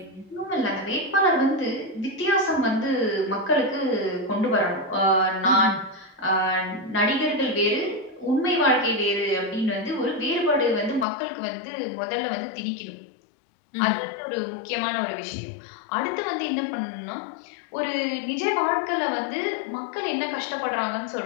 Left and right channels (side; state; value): right; drops out; at 11.1 s